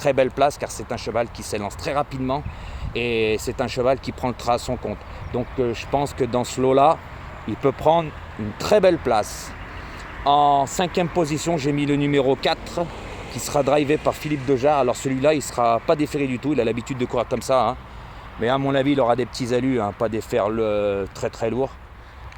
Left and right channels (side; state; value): both; identical; correlation 1.00